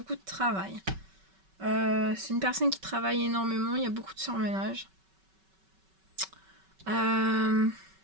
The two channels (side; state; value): left; late; 5.3 ms